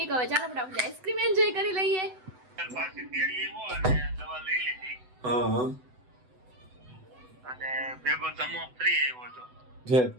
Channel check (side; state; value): left; late; 8.0 ms